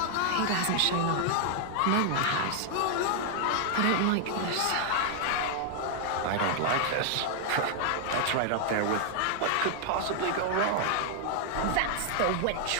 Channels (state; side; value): different; both; correlation 0.00